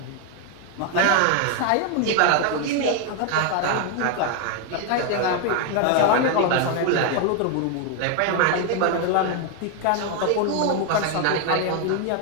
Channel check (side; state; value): both; different; correlation 0.01